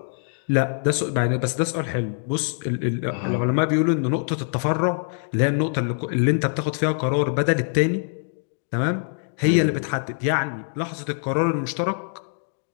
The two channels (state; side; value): silent; right; digital silence